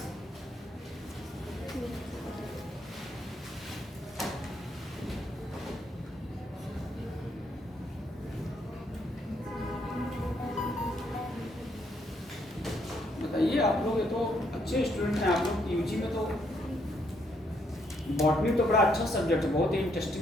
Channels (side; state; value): both; normal; correlation 0.73